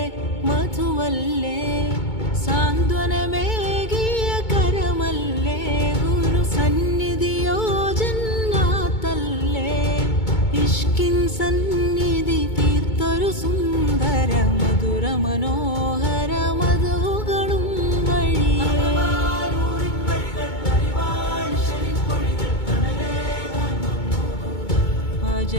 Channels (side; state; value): right; late; 2.2 ms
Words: മധുവല്ലേ, സാന്ത്വനമേകിയ കരമല്ലേ, ഗുരു സന്നിധിയോ ജന്നാത്തല്ലേ, ഇഷ്കിൻ സന്നിധി തീർത്തൊരു സുന്ദര മധുര മനോഹര മധുകളും വഴിയേ.